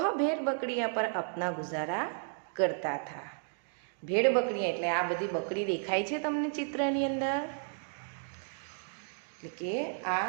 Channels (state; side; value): silent; left; digital silence